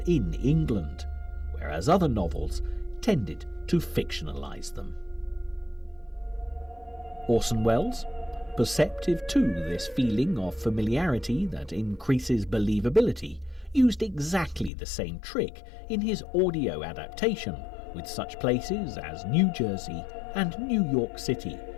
England, whereas other novels tended to fictionalise them. Orson Welles, perceptive to this feeling of familiarity that increases believability, used exactly the same trick in his audio adaptation, with such places as New Jersey and New York City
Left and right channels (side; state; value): right; drops out; at 14.7 s